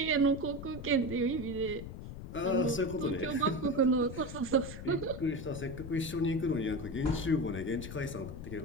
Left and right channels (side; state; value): left; noise; rumble, 10 dB below the sound